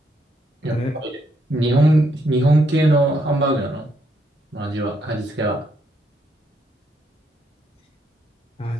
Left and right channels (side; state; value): both; normal; correlation 0.75